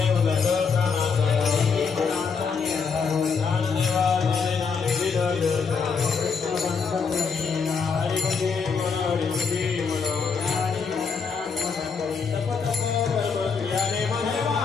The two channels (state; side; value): quieter; right; 5.5 dB